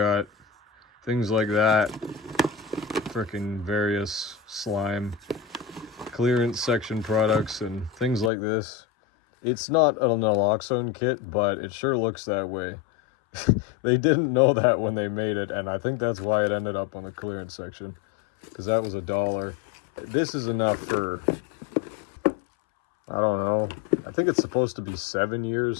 things like that, freaking various slime clearance section products and things like this. It's not an naloxone kit, but it sure looks that way. They didn't know that when they made it, and I think that's why it ended up on the clearance section, because that was $1. This is enough for, I don't know, I think it's supposed to be 7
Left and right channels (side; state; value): right; drops out; at 8.3 s